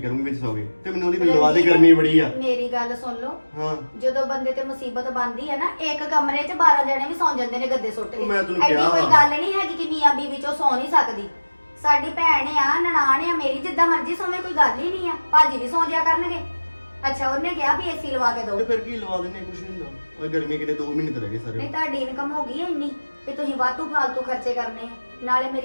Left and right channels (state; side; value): inverted; both; correlation -1.00